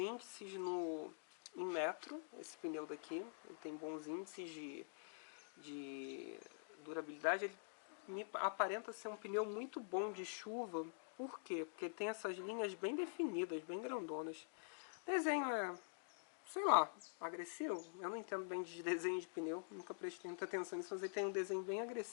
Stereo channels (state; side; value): silent; right; digital silence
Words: em metro, esse pneu daqui, ele tem bons índices de durabilidade, ele me aparenta ser um pneu muito bom de chuva. Por quê? Porque ele tem essas linhas bem definidas, bem grandonas. O desenho sei lá, agressivo. Eu não entendo bem de desenho de pneu, nunca prestei muita atenção nisso, mas ele tem um desenho bem